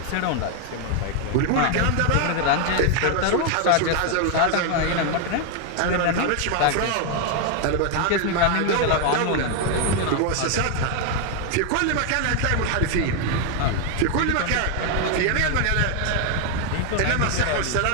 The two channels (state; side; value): different; both; correlation 0.01